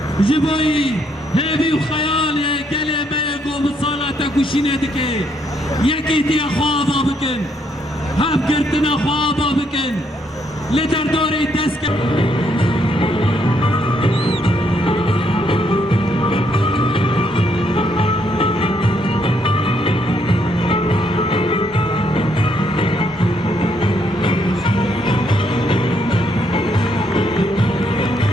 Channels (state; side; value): normal; both; correlation 0.73